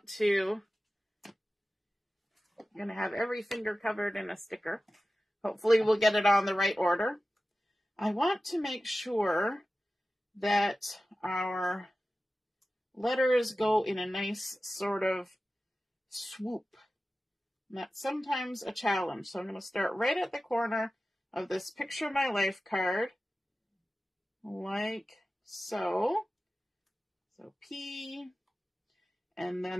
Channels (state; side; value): normal; both; correlation 0.95